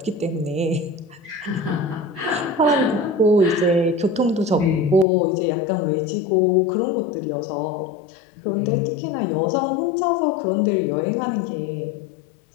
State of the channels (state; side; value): drops out; right; at 5.1 s